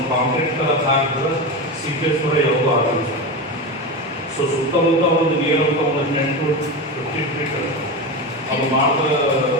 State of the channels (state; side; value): normal; both; correlation 0.20